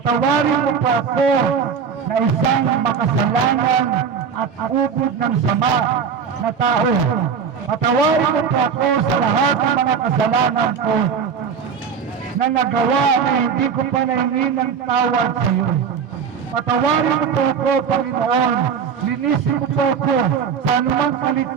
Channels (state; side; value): quieter; left; 6.7 dB